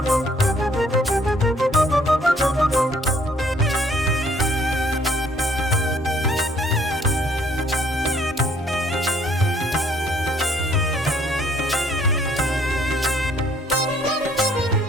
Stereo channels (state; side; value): normal; both; correlation 0.62